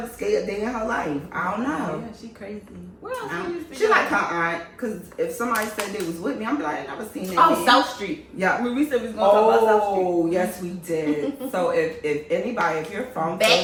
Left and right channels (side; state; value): both; identical; correlation 1.00